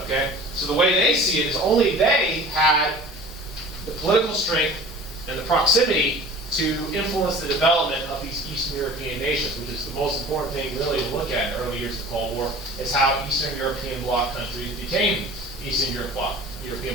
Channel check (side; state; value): both; normal; correlation 0.43